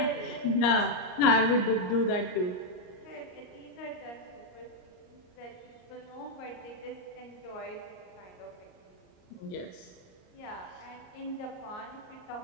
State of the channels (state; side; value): late; right; 38 ms